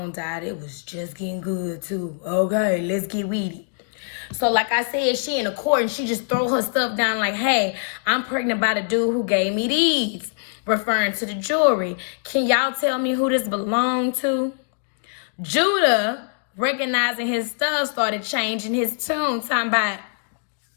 died. It was just getting good, too. Okay, let's get weedy. So, like I said, she in the court and she just throw her stuff down like, hey, I'm pregnant by the dude who gave me these, referring to the jewelry. Can y'all tell me who this belonged to? Judah, recognizing his stuff, started changing his tune, talking about,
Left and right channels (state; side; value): silent; right; digital silence